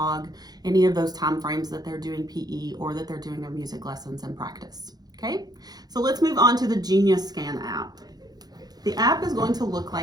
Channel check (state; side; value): late; left; 0.19 ms